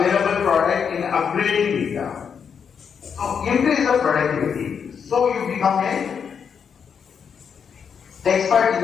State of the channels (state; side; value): quieter; right; 6.9 dB